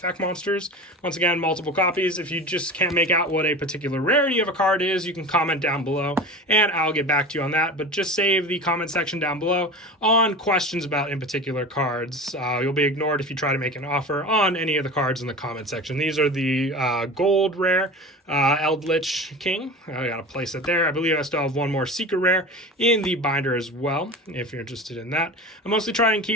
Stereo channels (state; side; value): normal; both; correlation 0.32